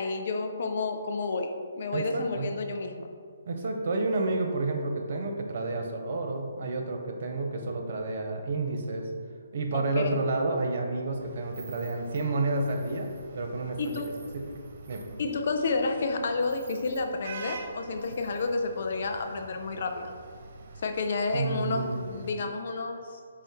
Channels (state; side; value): inverted; both; correlation -0.70